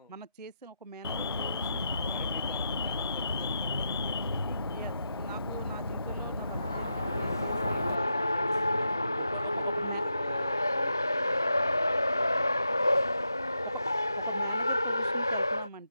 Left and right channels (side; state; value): both; inverted; correlation -0.85